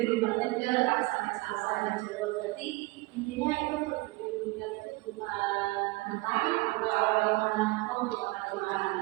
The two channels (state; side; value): quieter; left; 22.5 dB